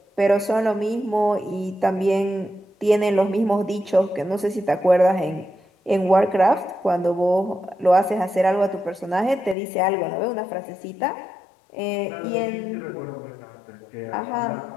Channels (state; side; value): drops out; right; at 9.6 s